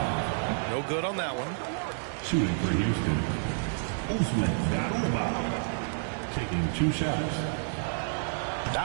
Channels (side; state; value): left; silent; digital silence